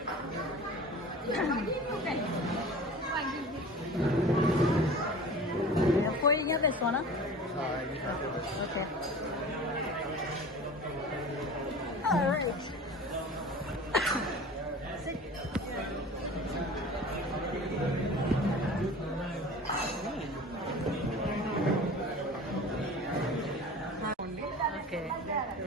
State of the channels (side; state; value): both; normal; correlation 0.39